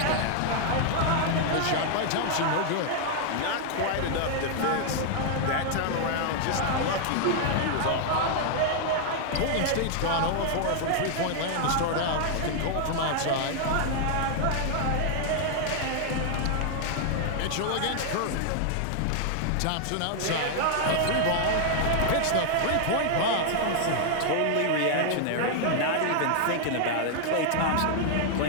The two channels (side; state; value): both; different; correlation 0.00